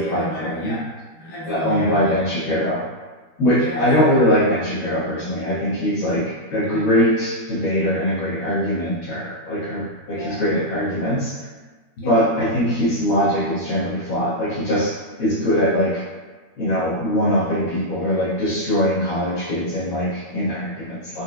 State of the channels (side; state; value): right; late; 13 ms